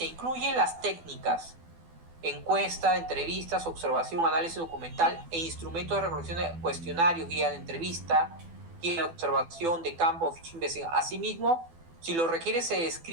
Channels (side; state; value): left; late; 12 ms